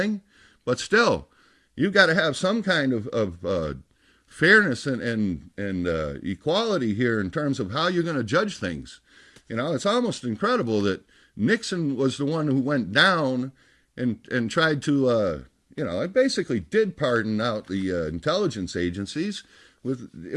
But still, you've got to have some kind of fairness and equality here in terms of how you're going to judge things. It's almost incredible that Nixon was the one who went down and tried to, it basically did pardon out the intelligence agencies.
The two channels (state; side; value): identical; both; correlation 1.00